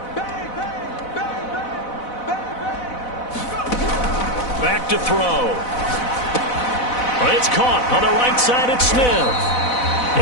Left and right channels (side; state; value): right; late; 4.0 ms